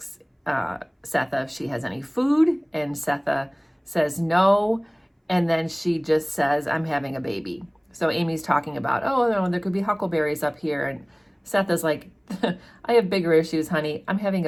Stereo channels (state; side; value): identical; both; correlation 1.00